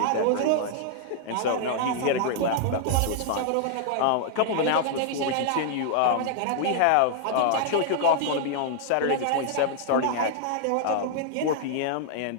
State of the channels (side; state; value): both; different; correlation -0.01